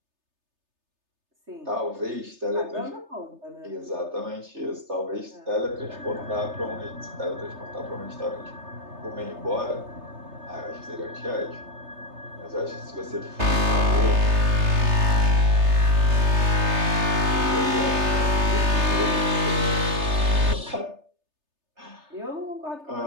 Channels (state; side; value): late; left; 3.3 ms